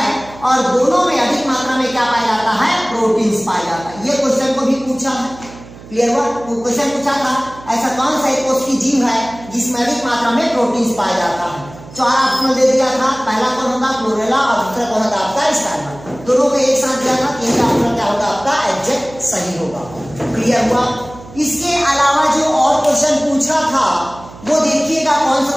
और दोनों में अधिक मात्रा में क्या पाया जाता है, प्रोटीन पाया जाता है। ये क्वेश्चन को भी पूछा है। क्लियर हुआ? क्वेश्चन पूछा था ऐसा कौन सा एक कोश की जीव है जिसमें अधिक मात्रा में प्रोटीन पाया जाता है। 4 ऑप्शन दे दिया था, पहला कौन होगा क्लोरेला और दूसरा कौन होगा आपका स्पाइरुलिना। दोनों को एक साथ दिया था, तीसरा ऑप्शन क्या होगा आपका एग्जैक्ट सही होगा। क्लियर हुआ? इसके अलावा जो और क्वेश्चन पूछा था वो देखिएगा कौन सा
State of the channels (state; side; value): noise; right; hum, 18 dB below the sound